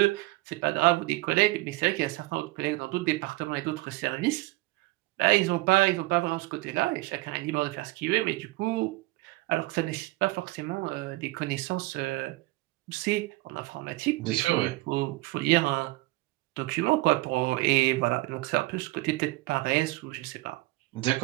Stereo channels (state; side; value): quieter; left; 20.8 dB